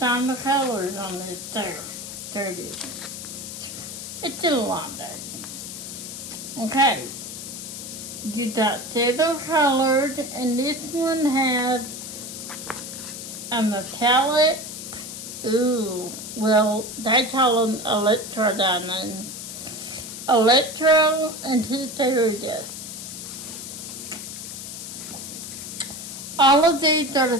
the colors on this. There it is. It's in a long day. Okay. You got silver colored, and this one has a metallic. Ooh, well, they call them electro diamonds. Electro and two fairy dust. All of these are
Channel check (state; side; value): noise; left; hiss, 9 dB below the sound